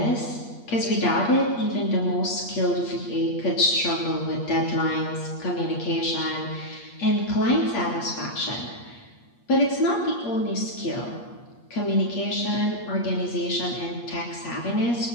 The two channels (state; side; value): late; right; 8.4 ms